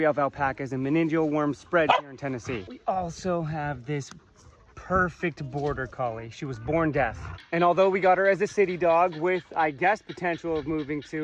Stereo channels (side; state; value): both; identical; correlation 1.00